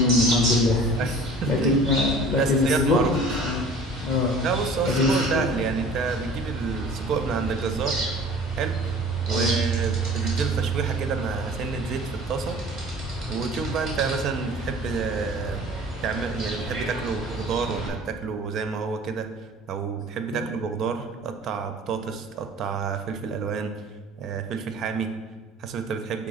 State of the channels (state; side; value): normal; both; correlation 0.46